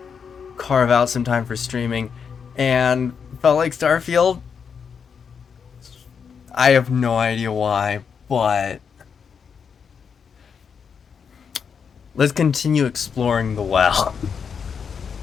carve out some time for streaming and felt like Starfield. I have no idea why, but let's continue exploring the well.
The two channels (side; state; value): right; quieter; 6.6 dB